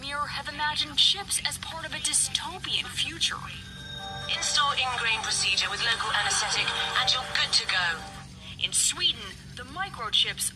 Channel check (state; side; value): identical; both; correlation 1.00